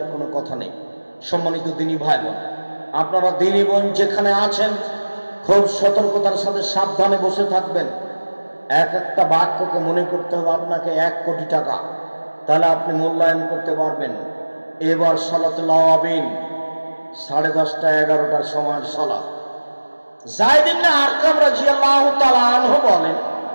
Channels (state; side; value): inverted; both; correlation -1.00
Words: কোনো কথা নেই। সম্মানিত দিনী ভাই বোন, আপনারা দিনী বোন যেখানে আছেন খুব সতর্কতার সাথে সাবধানে বসে থাকবেন। এক একটা বাক্যকে মনে করতে হবে আপনাকে 1 কোটি টাকা, তাহলে আপনি মূল্যায়ন করতে পারবেন। এবার সালাতুল আওয়াবিন 10:30 11টার সময় সালাত। যায়েদ ইবনে আরকাম রাদিয়াল্লাহু তাআলা আনহু বলেন